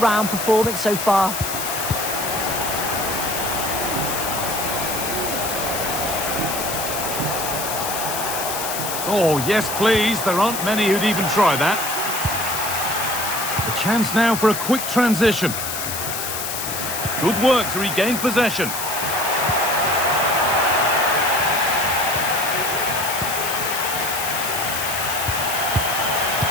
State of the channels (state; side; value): noise; left; hiss, 4 dB below the sound